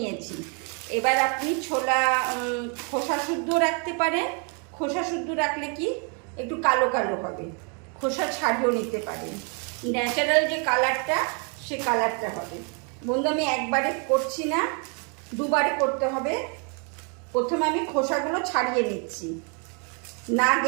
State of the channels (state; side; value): quieter; left; 37.5 dB